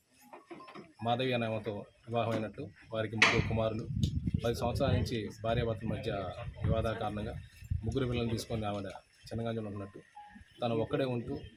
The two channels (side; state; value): both; identical; correlation 1.00